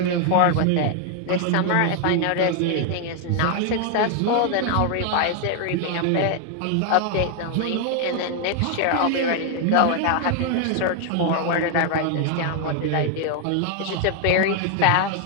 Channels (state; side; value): different; both; correlation 0.00